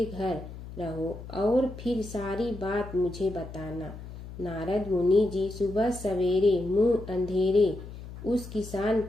घर रहो और फिर सारी बात मुझे बताना। नारद मुनि जी सुबह सवेरे मुंह अंधेरे उस किसान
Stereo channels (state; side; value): noise; left; hum, 13 dB below the sound